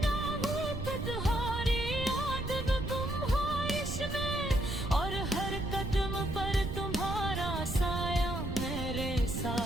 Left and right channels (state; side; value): noise; right; rumble, 5 dB below the sound